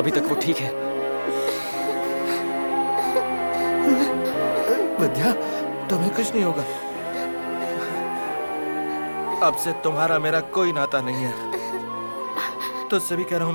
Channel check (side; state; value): both; inverted; correlation -1.00